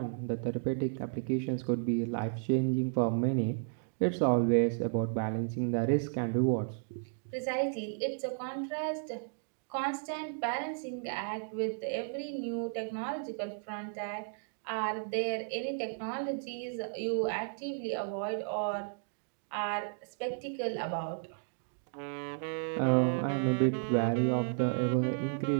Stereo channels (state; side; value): silent; left; digital silence